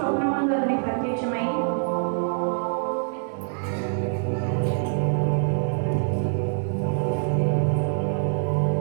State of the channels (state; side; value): silent; left; 62 dB below the other